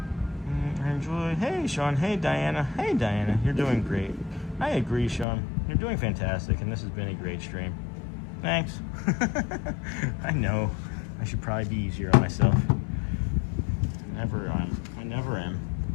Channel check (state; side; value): drops out; right; at 5.2 s